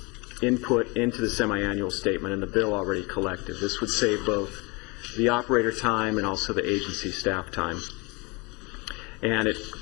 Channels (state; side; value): quieter; right; 27.8 dB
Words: input into the semi-annual statement and the bill already collected. This would save both the operator time and also the agency staff time. And it